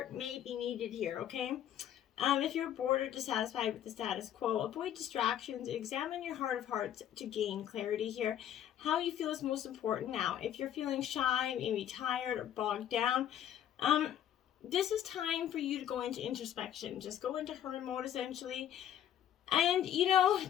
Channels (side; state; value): right; quieter; 10.7 dB